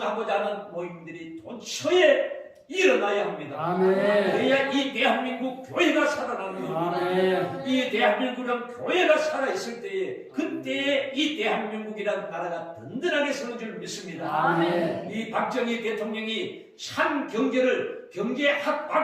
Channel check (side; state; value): both; identical; correlation 1.00